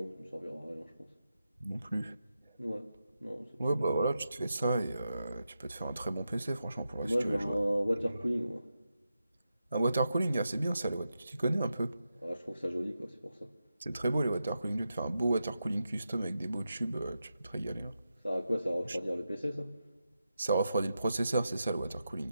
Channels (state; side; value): inverted; both; correlation -0.89